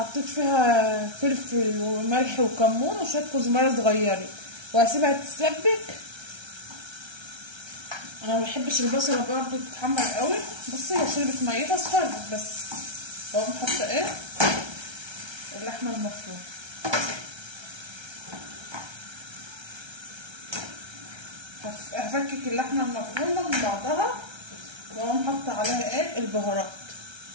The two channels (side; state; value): left; late; 1.3 ms